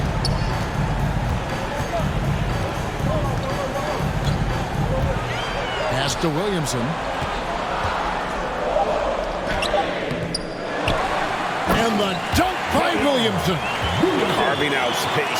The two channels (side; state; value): both; identical; correlation 1.00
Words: Pass to Williamson. And the dunk by Williamson. Carving out